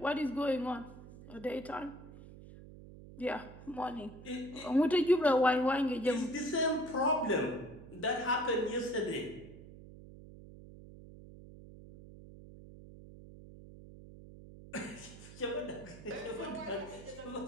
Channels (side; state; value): right; noise; hum, 17 dB below the sound